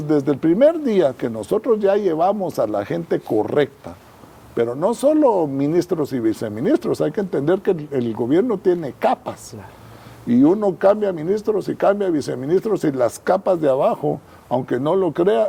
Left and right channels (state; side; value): identical; both; correlation 1.00